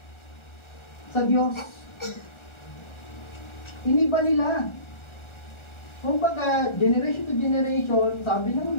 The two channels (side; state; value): right; late; 1.4 ms